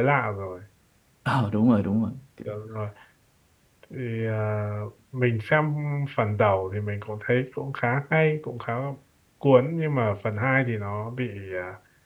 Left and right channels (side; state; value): both; identical; correlation 1.00